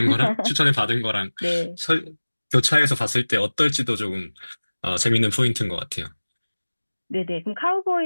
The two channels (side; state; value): both; inverted; correlation -1.00